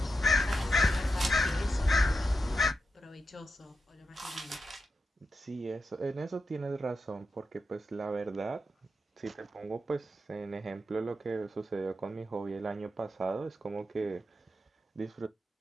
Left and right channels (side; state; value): both; normal; correlation 0.87